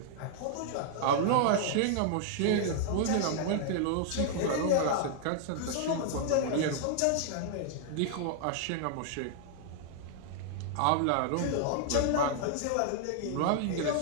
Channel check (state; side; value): different; both; correlation -0.01